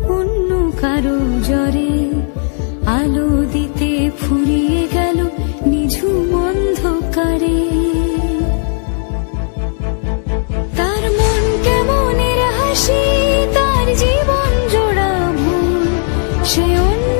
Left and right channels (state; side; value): silent; right; 56 dB below the other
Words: অন্য কারো জ্বরে, আলো দিতে ফুরিয়ে গেল নিঝুম অন্ধকারে। তার মন কেমনের হাসি, তার জীবন জোড়া ভুল, সে